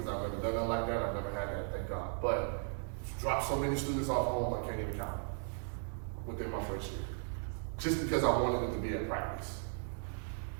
I've never done nothing like that. I've never had that, thank God. But dropped so many students off home, I can't even count within my first year. Just because I wanted them to be at practice.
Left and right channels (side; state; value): left; silent; 53 dB below the other